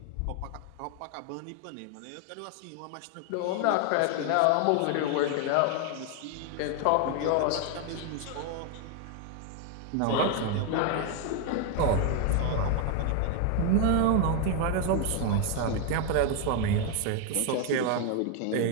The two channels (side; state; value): both; different; correlation 0.01